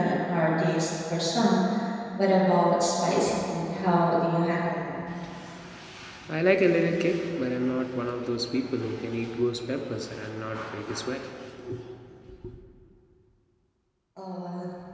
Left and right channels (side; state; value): both; identical; correlation 1.00